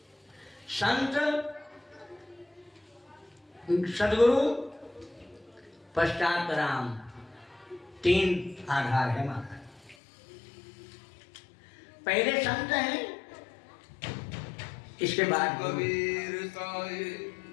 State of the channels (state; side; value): drops out; right; at 10.0 s